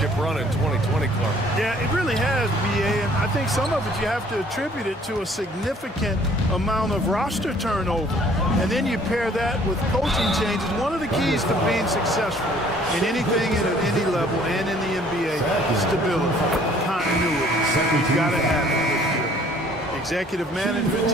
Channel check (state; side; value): normal; both; correlation 0.57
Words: run in 2020, Clark. Yeah, it really has, BA, and I think some of it you have to attribute it to a significant amount of roster turnover. And then you pair that with coaching changes. One of the keys to being successful in anything at any level and in the NBA is stability, continuity. You've got to have it with your executive management